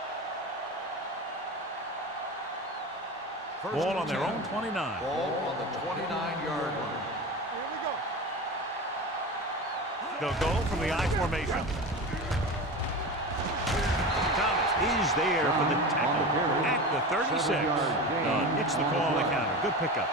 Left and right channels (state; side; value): normal; both; correlation 0.28